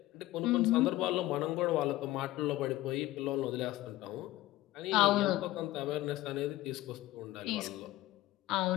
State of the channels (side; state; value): right; quieter; 16.6 dB